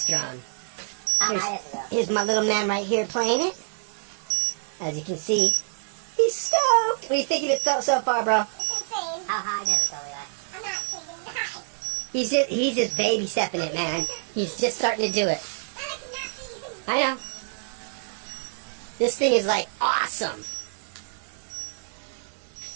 drone. Here's my little man right here playing it. As you can see, he's stoked. What do you think of it so far, bro? It's insane. How high does it go, Levi? I'm not kidding. High. He's just baby stepping it, man. He's just starting to do it. I know. This thing is like awesome.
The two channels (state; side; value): silent; left; digital silence